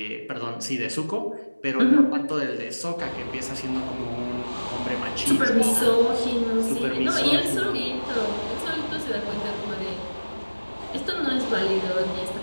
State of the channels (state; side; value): inverted; both; correlation -1.00